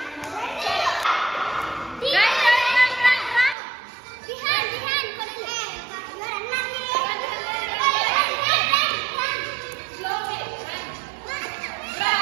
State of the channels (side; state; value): left; drops out; at 3.6 s